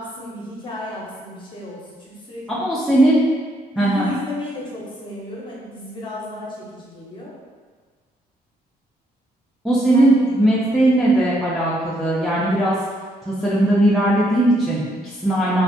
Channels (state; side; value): normal; both; correlation 0.74